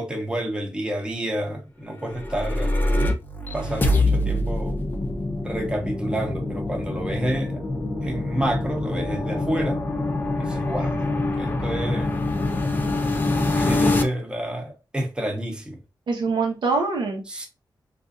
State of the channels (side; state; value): both; normal; correlation 0.85